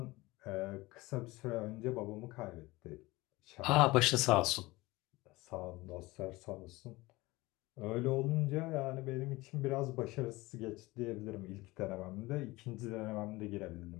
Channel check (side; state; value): right; quieter; 20.9 dB